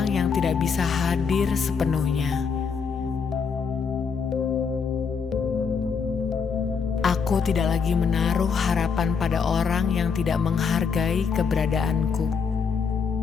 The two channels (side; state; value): right; quieter; 5.8 dB